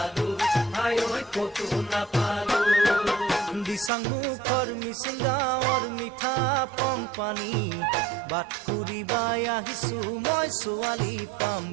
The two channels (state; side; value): drops out; left; at 3.9 s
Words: হাই কতো নাপালো দিচাং মুখৰ মিচিং গাঁৱৰ মিঠা পং পানী বাট ফুৰিবাই আহিছো মই ছোৱালী পাম